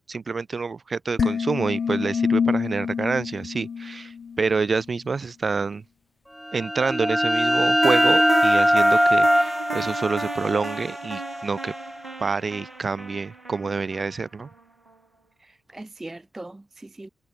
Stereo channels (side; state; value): both; normal; correlation 0.93